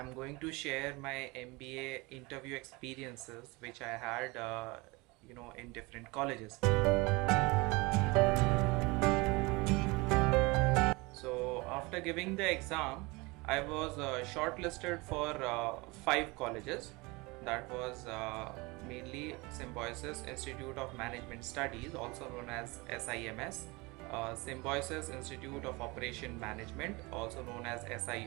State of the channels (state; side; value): quieter; left; 25.1 dB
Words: going to share my MBA interview experiences, which I had, in different colleges. So after giving the exam, I was shortlisted for five colleges. That was mainly Symbiosis Institute of Management Studies, also known as SIMS, Symbiosis Institute of Operation Management, also known as